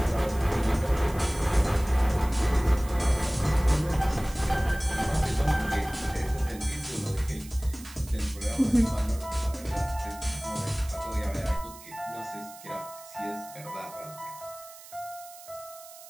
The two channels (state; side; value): noise; right; hiss, 18 dB below the sound